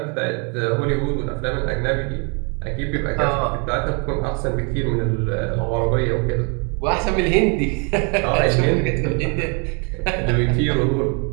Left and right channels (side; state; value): left; quieter; 35.8 dB